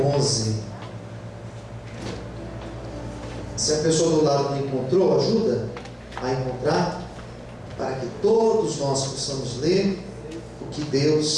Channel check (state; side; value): identical; both; correlation 1.00